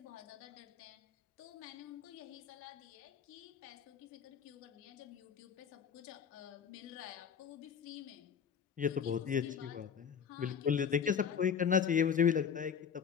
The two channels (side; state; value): right; quieter; 7.4 dB